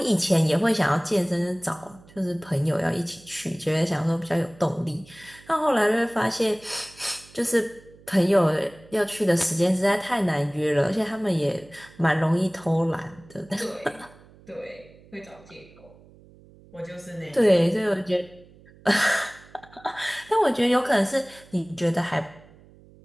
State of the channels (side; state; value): right; noise; hum, 25 dB below the sound